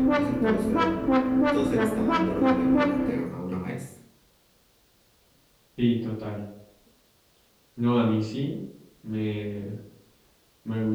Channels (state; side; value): identical; both; correlation 1.00